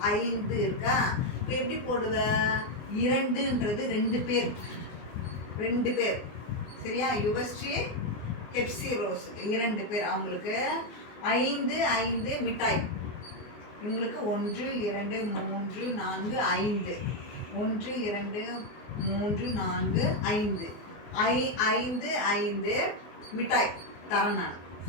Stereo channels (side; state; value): right; late; 24 ms